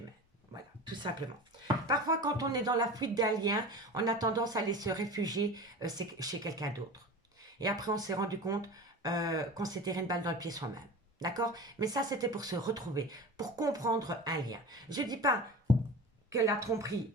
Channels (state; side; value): normal; both; correlation 0.33